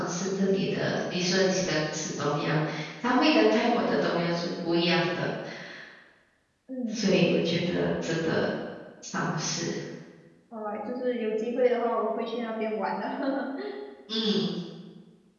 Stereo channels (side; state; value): both; identical; correlation 1.00